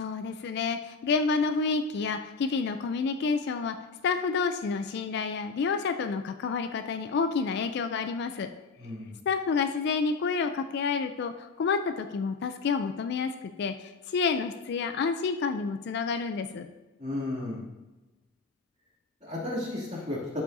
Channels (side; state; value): right; quieter; 4.4 dB